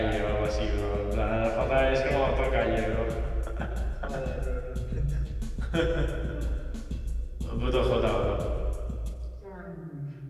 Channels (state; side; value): identical; both; correlation 1.00